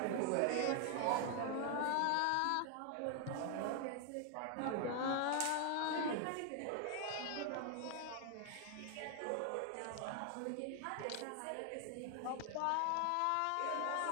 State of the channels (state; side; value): different; both; correlation 0.00